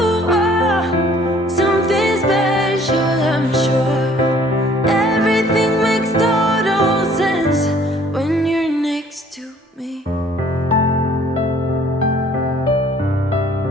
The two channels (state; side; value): normal; both; correlation 0.57